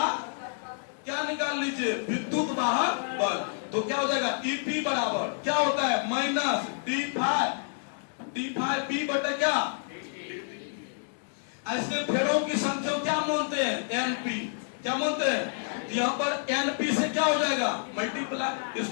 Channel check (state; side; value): silent; right; digital silence